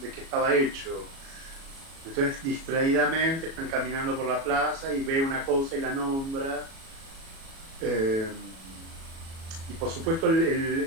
qué estaba hecho. Entonces, distraídamente, están caminando por la plaza y ve una cosa y la nombra. Y por supuesto,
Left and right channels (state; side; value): late; left; 37 ms